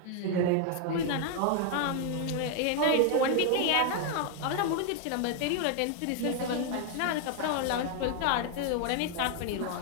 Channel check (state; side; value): different; both; correlation 0.00